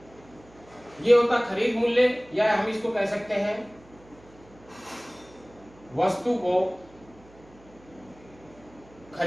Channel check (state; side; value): noise; right; hum, 25 dB below the sound